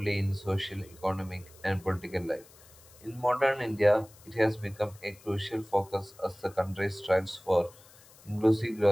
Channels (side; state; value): left; noise; hiss, 24 dB below the sound